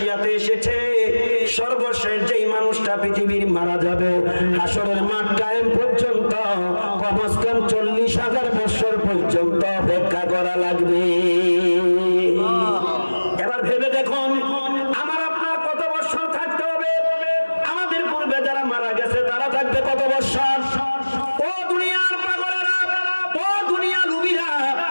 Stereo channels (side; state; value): both; inverted; correlation -1.00